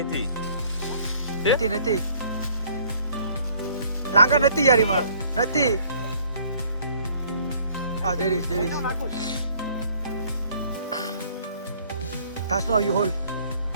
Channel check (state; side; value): inverted; both; correlation -0.58